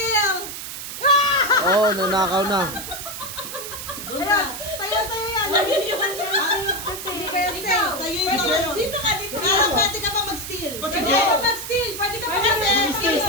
Oh, nanakaw na. Doon ka. Sayo yan. Sabi niyo ba siya kasi? Ikaw. Sa'yo yung sa'yo. Dito ka, dito ka. Pero pwede ka pa mag-steal. Ba't Pwede sige? ka mag-steal. Pwede ka Kasi mag-steal.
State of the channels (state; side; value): noise; right; hiss, 8 dB below the sound